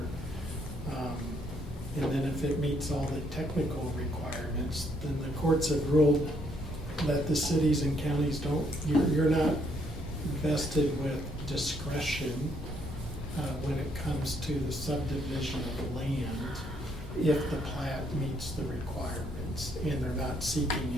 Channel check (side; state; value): both; normal; correlation 0.71